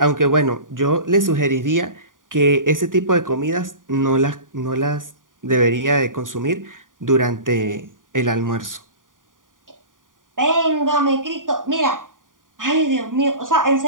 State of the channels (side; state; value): left; late; 0.89 ms